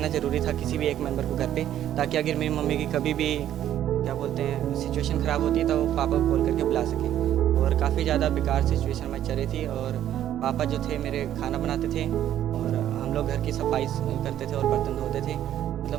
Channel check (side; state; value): left; quieter; 11.4 dB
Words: ज़रूरी था, किसी भी एक मेंबर को घर पे, ताकि अगर मेरी मम्मी की कभी भी क्या बोलते हैं सिचुएशन ख़राब होती है तो वो पापा को कॉल करके बुला सके। और काफ़ी ज़्यादा बेकार सिचुएशन में चल रही थी, और पापा जो थे मेरे खाना बनाते थे और हम लोग घर की सफाई करते थे और बर्तन धोते थे,